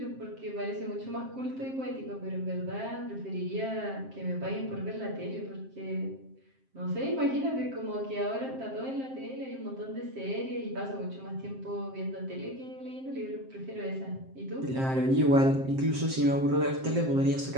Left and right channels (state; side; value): late; left; 7.6 ms